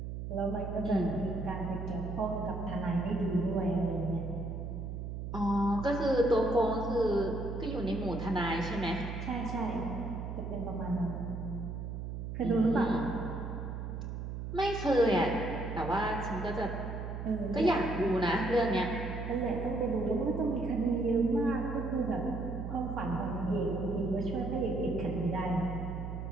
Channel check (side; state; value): right; noise; hum, 6 dB below the sound